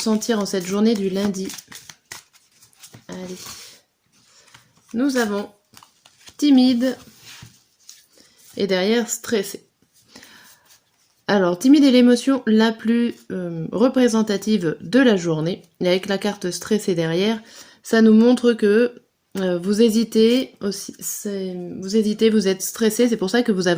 en cette journée du lundi. Allez. Nous avons timide et derrière stressé. Alors, timide est l'émotion la plus représentative de la journée. Et avec la carte stressée derrière, ça nous montre que vous hésitez aussi, vous êtes stressé, c'est pour ça que vous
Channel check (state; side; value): identical; both; correlation 1.00